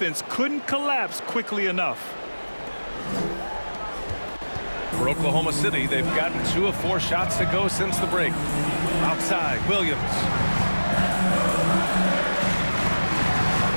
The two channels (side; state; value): both; inverted; correlation -1.00